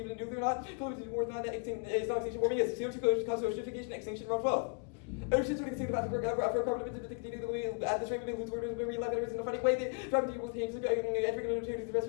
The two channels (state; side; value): quieter; right; 39.4 dB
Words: nuclear or not? Close to more than that extinction warming is CO2 cause oceanification extinction around 12. Oceans would extinct about for carbon emissions to continue the way at this rate we lose orders when we left in a funny way. They try to deal with things entering the